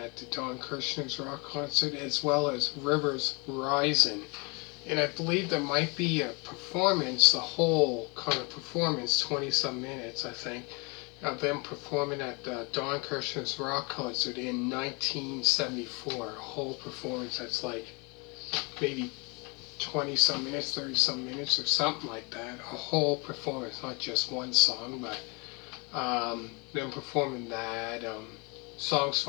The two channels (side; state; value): right; quieter; 30.4 dB